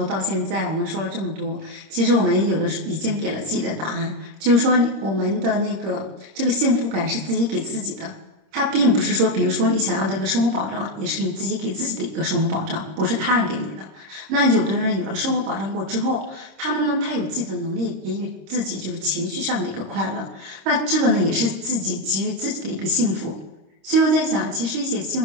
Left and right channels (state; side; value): late; left; 26 ms